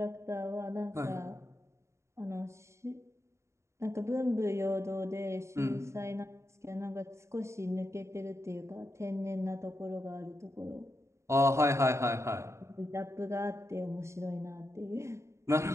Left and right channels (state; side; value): late; left; 0.14 ms